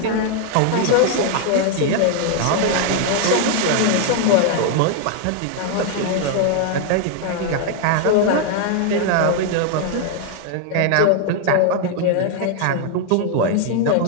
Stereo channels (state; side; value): different; both; correlation 0.00